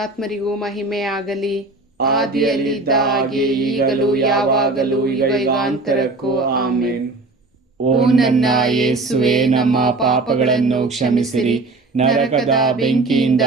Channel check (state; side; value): quieter; left; 3.3 dB